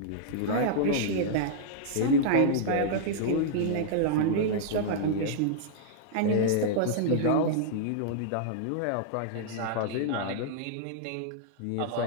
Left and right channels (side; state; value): both; different; correlation -0.02